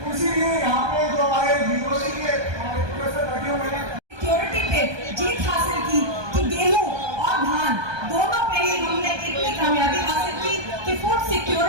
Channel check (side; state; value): left; late; 1.2 ms